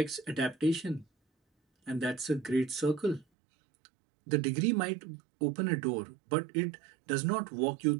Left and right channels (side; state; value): left; drops out; at 3.2 s